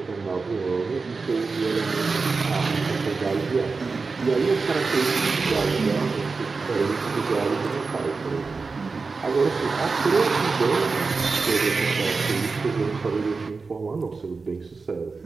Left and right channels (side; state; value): left; quieter; 4.3 dB